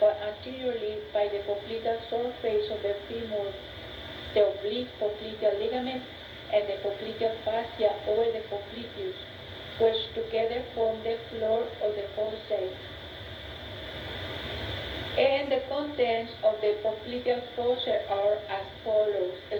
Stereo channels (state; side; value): identical; both; correlation 1.00